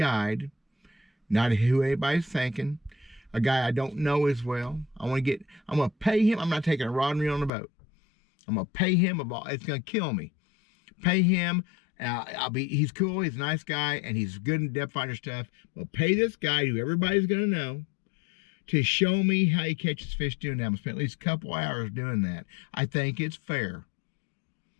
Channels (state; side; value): drops out; right; at 7.5 s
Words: not who anybody's thinking, a guy I don't know as well. I'm going to pay him. I'm not taking a rod and reel on the boat. I'm going to pay him it's going to kill me. Pay him. He's cool, he's a nice guy, and he's good in depth finder stuff. We'll pay this guy who everybody's going to know to show me how he catches fish doing that. I'm going to spend at least a couple hours doing that. I think it's fair.